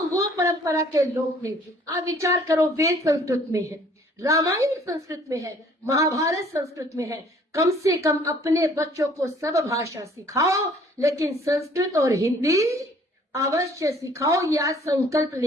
वो परंपरा के लोग हैं। आप विचार करो, वेद संस्कृत में है, रामायण संस्कृत में है, महाभारत संस्कृत में है। कम से कम अपने बच्चों को सब भाषा सिखाओ, लेकिन संस्कृत और हिंदी अवश्य सिखाओ। या संकल्प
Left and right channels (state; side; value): normal; both; correlation 0.57